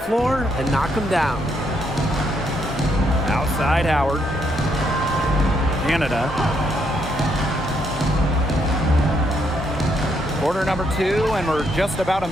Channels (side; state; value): both; normal; correlation 0.75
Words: and knock them down. Outside Howard. Canada. Quarter number 2, and we're just about a